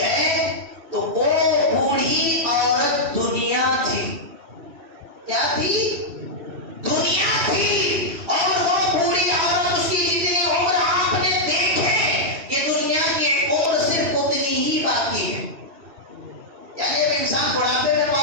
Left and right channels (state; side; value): late; left; 2.5 ms